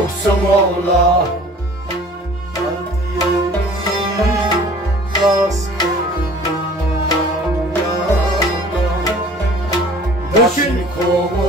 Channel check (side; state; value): both; normal; correlation 0.48